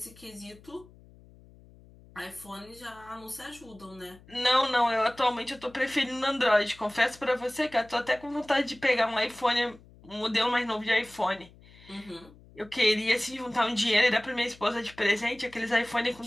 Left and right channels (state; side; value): noise; left; hum, 24 dB below the sound